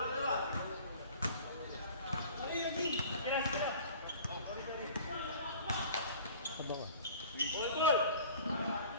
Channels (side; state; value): both; inverted; correlation -0.45